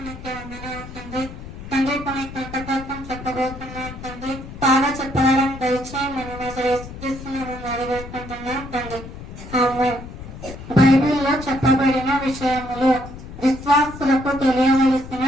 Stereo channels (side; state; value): left; noise; rumble, 13 dB below the sound